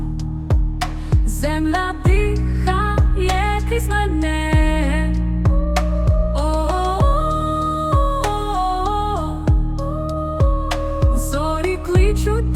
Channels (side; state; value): both; identical; correlation 1.00